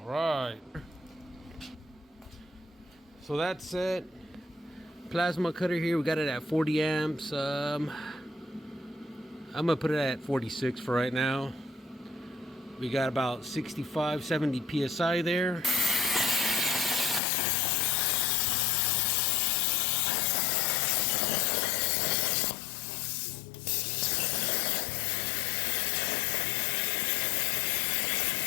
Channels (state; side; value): drops out; right; at 17.2 s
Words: right. So that's it. Plasma cutter here. We got it at 40 amps. I'm gonna put it at 46 for right now. We got about 65, 70 psi there.